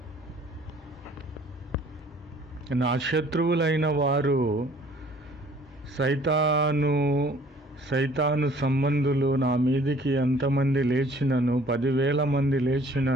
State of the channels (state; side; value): normal; both; correlation 0.55